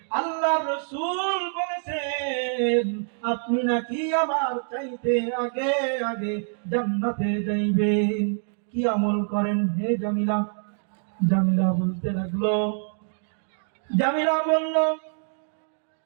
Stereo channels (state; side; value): silent; left; 61 dB below the other